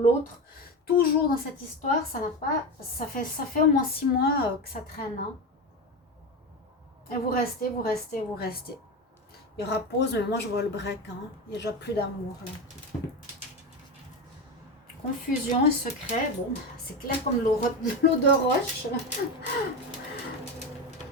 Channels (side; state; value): both; normal; correlation 0.19